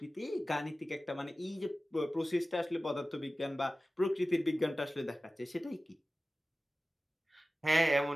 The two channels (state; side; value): normal; both; correlation 0.96